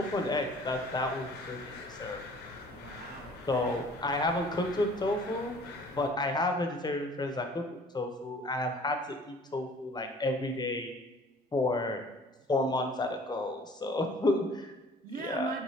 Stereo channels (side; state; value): both; normal; correlation 0.51